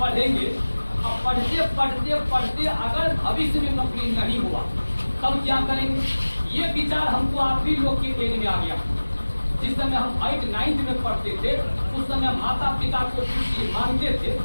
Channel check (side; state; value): both; inverted; correlation -1.00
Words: और पढ़ते पढ़ते पढ़ते अगर भविष्य में नौकरी नहीं हुआ तब क्या करेंगे? ये विचार हमको आप ही लोग के देने में आ गया। जिस समय हम 8 9 में पढ़ते थे उस समय माता पिता को कुछ मांगते थे